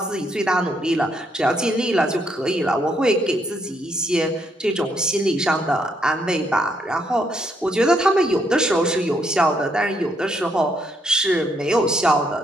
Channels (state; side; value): normal; both; correlation 0.74